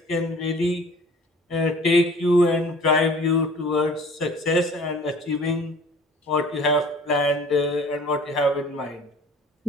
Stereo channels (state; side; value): normal; both; correlation 0.47